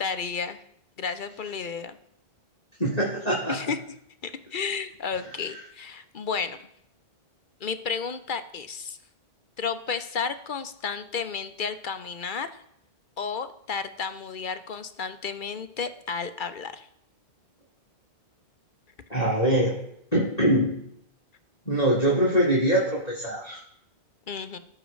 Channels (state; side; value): late; right; 2.3 ms